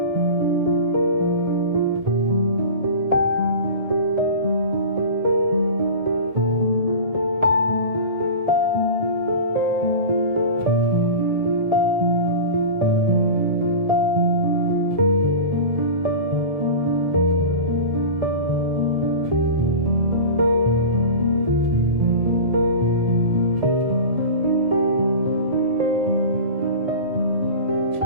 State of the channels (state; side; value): late; left; 1.7 ms